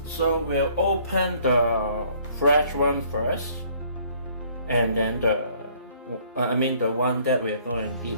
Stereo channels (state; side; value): inverted; both; correlation -0.61